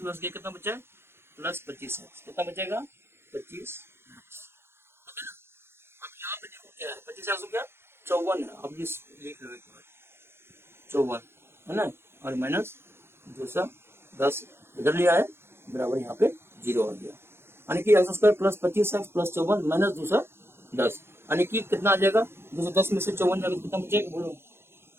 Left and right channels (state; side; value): late; left; 0.12 ms